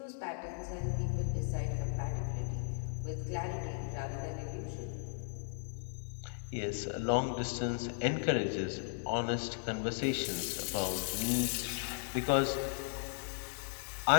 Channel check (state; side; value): silent; right; 53 dB below the other